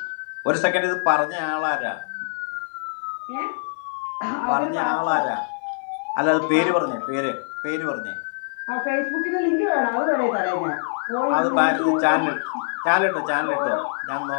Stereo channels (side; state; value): right; silent; 63 dB below the other